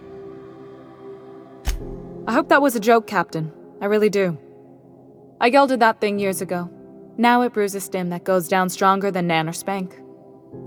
I hope that was a joke, Captain. I really do. I gelded that thing years ago. Now it brews a stim that goes down stronger than Nan or Spank.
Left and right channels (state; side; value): identical; both; correlation 1.00